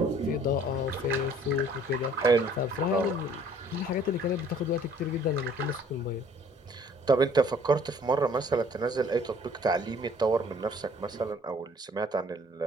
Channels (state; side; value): normal; both; correlation 0.57